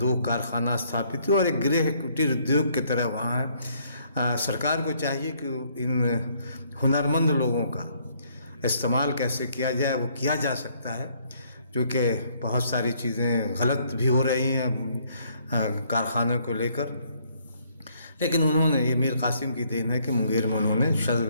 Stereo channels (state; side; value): inverted; both; correlation -0.67